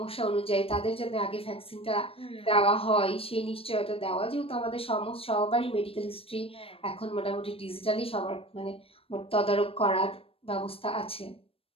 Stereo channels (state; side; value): late; right; 0.28 ms